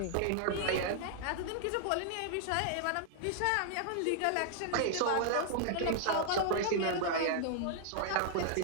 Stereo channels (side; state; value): both; different; correlation 0.00